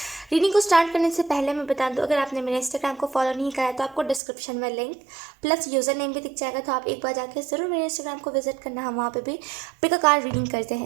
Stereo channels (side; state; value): left; drops out; at 4.2 s